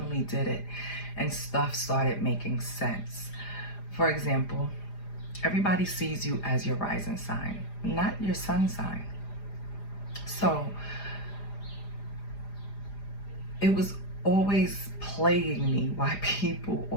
did it and stuff started making sense. For example, everybody sees you as your rising sign, not your sun sign. So it was always plaguing me why people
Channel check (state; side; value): late; right; 4.9 ms